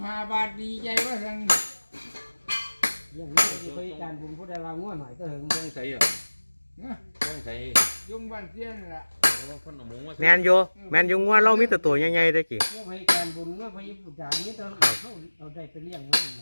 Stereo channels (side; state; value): both; inverted; correlation -1.00